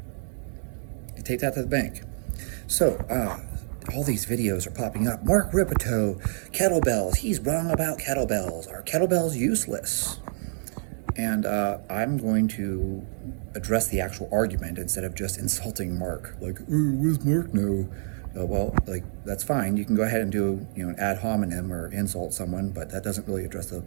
You take that to the bank. So, all these videos are popping up. Mark Rippetoe, kettlebells, he's wrong about kettlebells. Are kettlebells useless? And I'm going to address the actual argument instead of just insulting Mark. Like, where's Mark now? Well, like, that's fine. You can go ahead and do, an ad hominem or insult someone, but that doesn't really address the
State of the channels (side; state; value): left; silent; 60 dB below the other